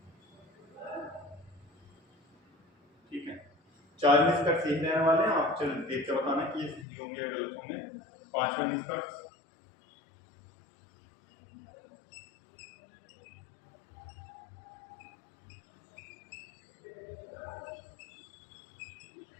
ठीक है, 4 निष्कर्ष यही रहने वाले हैं, आप चल देख के बताना कि ये सही होंगे या गलत होंगे। 5वां निष्कर्ष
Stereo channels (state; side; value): drops out; right; at 6.9 s